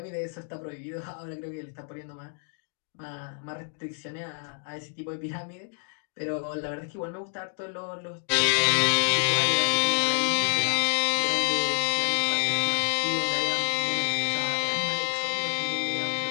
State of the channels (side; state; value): right; silent; 59 dB below the other